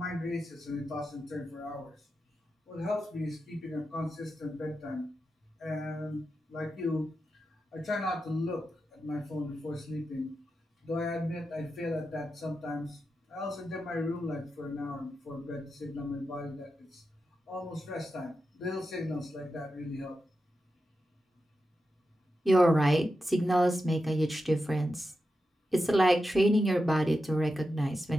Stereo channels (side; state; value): both; normal; correlation 0.89